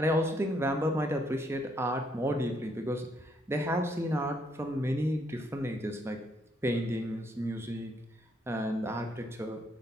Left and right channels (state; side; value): normal; both; correlation 0.72